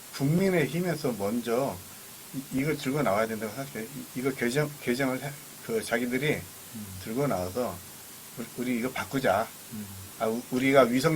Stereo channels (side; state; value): both; identical; correlation 1.00